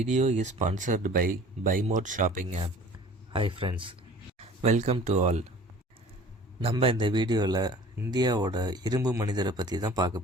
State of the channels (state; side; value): normal; both; correlation 0.47